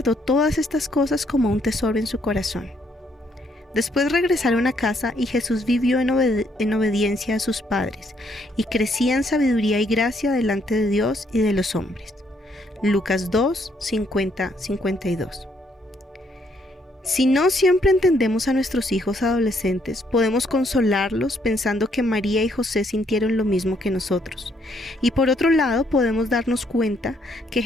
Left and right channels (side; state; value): both; normal; correlation 0.71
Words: todas estas cosas como un tesoro en su corazón. Después regresaron a casa y Jesús vivió en obediencia a sus padres y crecía en sabiduría y gracia delante de Dios y de los hombres. Lucas 2:50-52. Si no siempre entendemos a nuestros hijos adolescentes, podemos consolarlos pensando que María y José sintieron lo mismo que nosotros. Y por otro lado, podemos darnos cuenta que